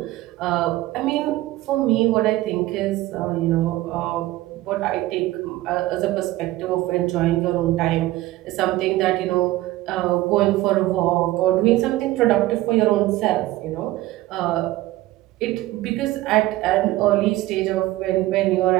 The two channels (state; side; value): quieter; left; 16.9 dB